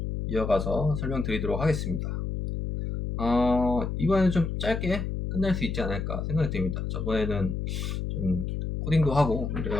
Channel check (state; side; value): noise; left; hum, 3 dB below the sound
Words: 이어가서 설명드리도록 하겠습니다. 이번에는 좀 짧게 끝낼 수 있지 않을까 생각이 듭니다. 저번에는 좀 코딩도 하고